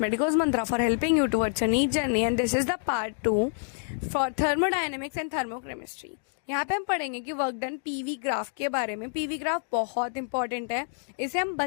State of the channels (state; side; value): silent; right; digital silence